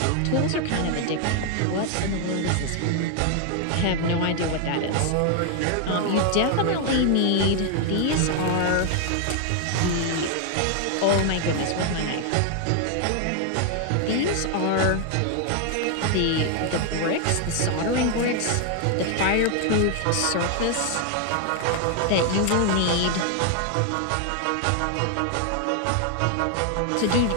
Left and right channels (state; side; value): different; both; correlation 0.00